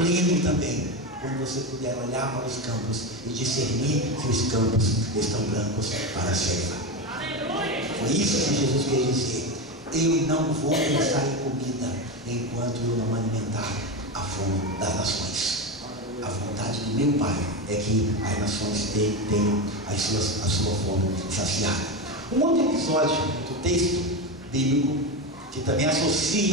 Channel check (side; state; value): both; normal; correlation 0.17